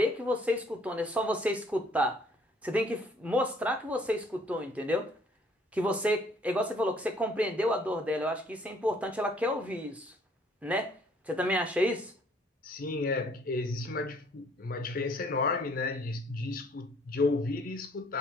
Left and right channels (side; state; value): both; normal; correlation 0.61